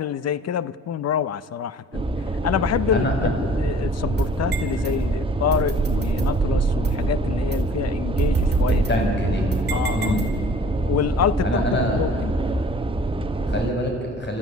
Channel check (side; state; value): both; normal; correlation 0.50